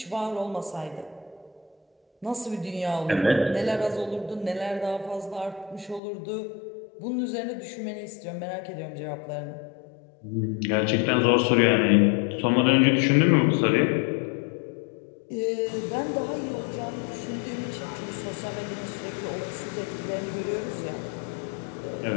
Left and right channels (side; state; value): right; drops out; at 6.0 s